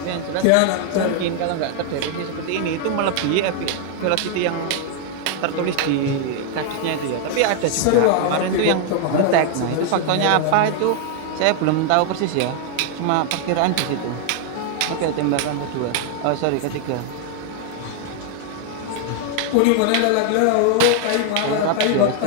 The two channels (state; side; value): different; both; correlation 0.00